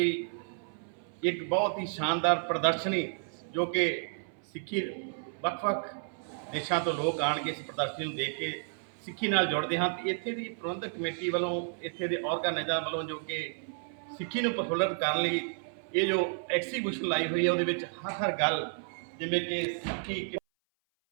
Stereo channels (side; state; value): left; silent; 56 dB below the other